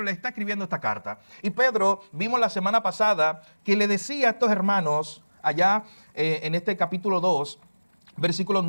le está escribiendo esta carta. Y Pedro, vimos la semana pasada, que le decía a estos hermanos, allá en este capítulo 2, versículos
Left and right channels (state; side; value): inverted; both; correlation -1.00